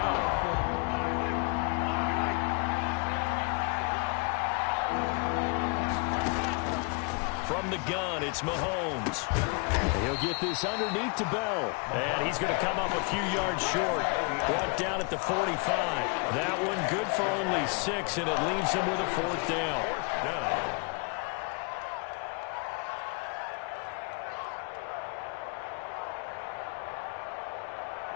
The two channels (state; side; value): quieter; right; 32.6 dB